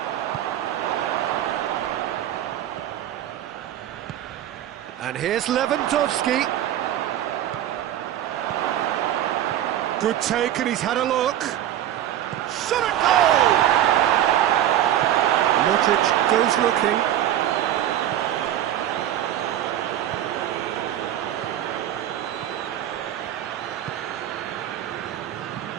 And here's Lewandowski. Good take, and he's had a look. Shot at goal! Modric goes looking.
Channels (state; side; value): quieter; left; 11.9 dB